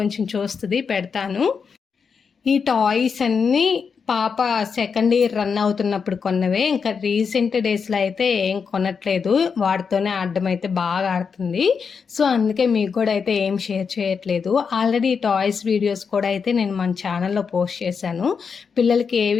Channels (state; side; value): quieter; right; 5.9 dB